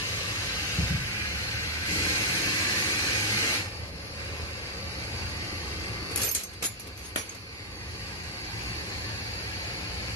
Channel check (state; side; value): normal; both; correlation -0.04